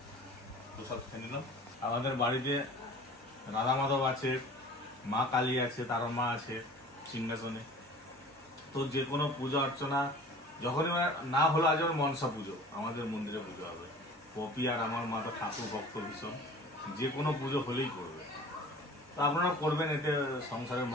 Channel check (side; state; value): both; normal; correlation 0.44